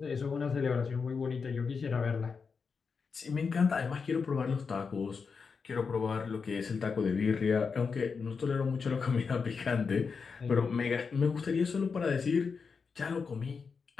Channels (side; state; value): right; quieter; 5.4 dB